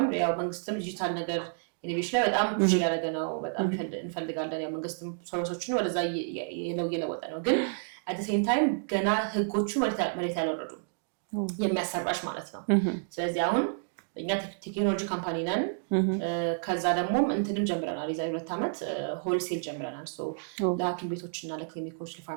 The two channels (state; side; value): silent; left; digital silence